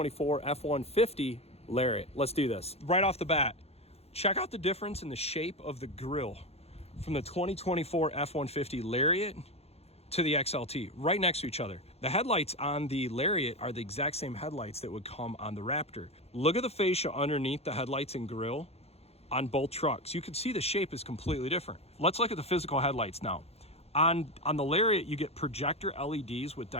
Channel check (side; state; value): right; late; 0.30 ms